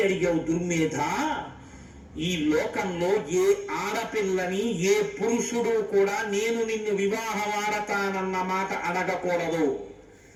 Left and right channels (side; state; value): both; identical; correlation 1.00